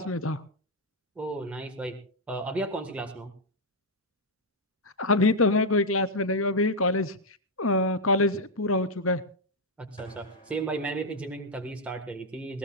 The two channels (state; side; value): normal; both; correlation -0.01